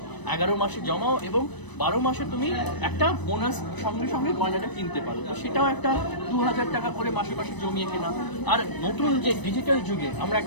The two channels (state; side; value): late; right; 1.0 ms